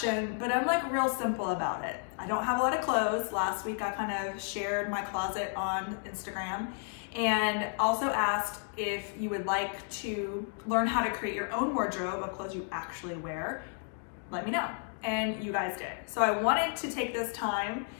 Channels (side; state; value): right; silent; 55 dB below the other